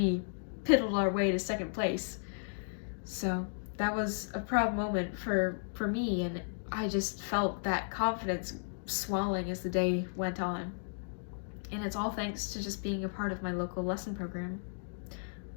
piddled our way to second place. So that was a proud moment for me, and I just felt that confidence swelling as the day went on. And it's all thanks to just being a part of my local lesson program.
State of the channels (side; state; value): right; silent; digital silence